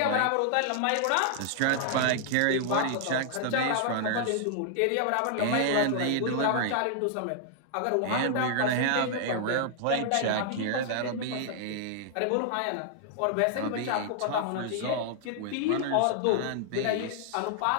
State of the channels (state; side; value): different; both; correlation -0.01